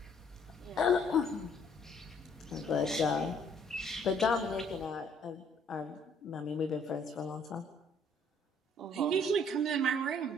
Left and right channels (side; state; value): both; normal; correlation 0.62